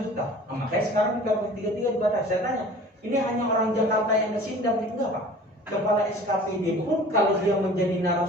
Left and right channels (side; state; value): both; normal; correlation 0.44